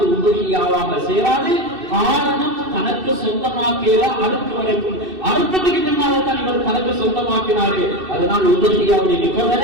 உதவியாவாக சேராது. காரணம், தனக்கு சொந்தமாக்கல அடுத்த வரைக்கும், அடுத்ததுக்கு பின்னால தான் இவர் தனக்கு சொந்தமாக்கினாரு. அதனால் உதவியாவுடைய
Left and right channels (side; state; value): left; late; 2.6 ms